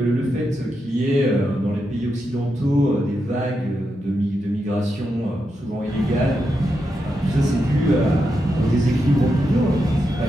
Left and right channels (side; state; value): both; normal; correlation 0.85